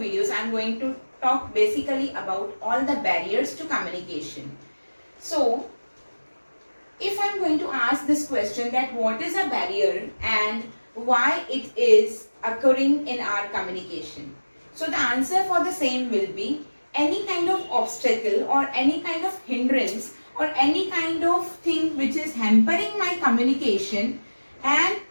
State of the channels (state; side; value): inverted; both; correlation -1.00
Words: I am going to talk basically about all the barriers to communication. So, if I am going to ask this question that what is a barrier and why it is occurring in our communication. So the answer for the same will be any kind of obstacle or any kind of hindrance or any kind of thing which is hampering my communication and